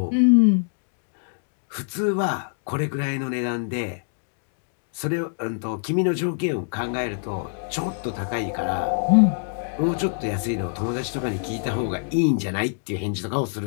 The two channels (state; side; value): silent; right; digital silence